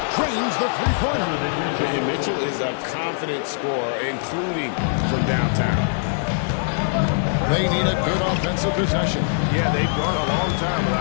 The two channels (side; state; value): right; silent; digital silence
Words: Trains the three-pointer. And Mitchell is a confident scorer, including from downtown. They need a good offensive possession. Yeah, they've gone a long time